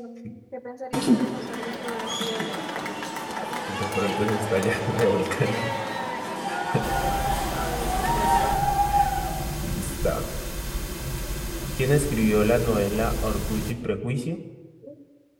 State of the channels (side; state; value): both; identical; correlation 1.00